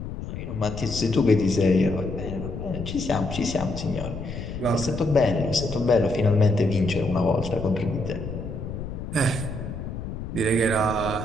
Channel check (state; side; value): noise; left; rumble, 7 dB below the sound